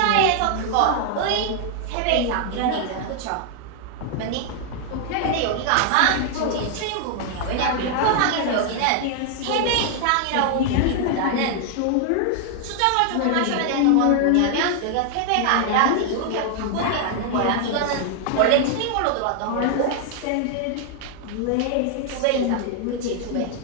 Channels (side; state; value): both; different; correlation 0.00